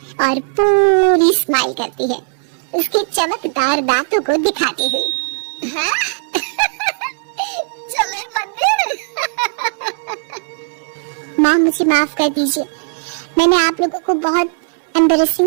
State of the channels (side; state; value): left; silent; digital silence